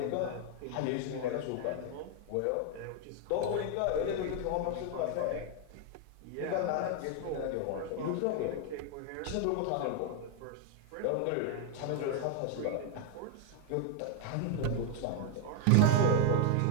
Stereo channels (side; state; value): both; different; correlation 0.00